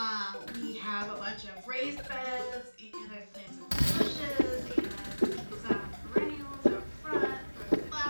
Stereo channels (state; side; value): inverted; both; correlation -1.00